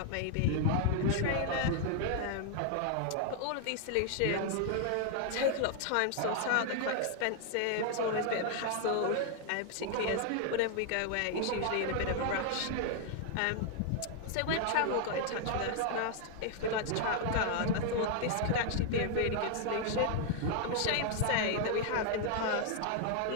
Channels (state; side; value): different; both; correlation 0.00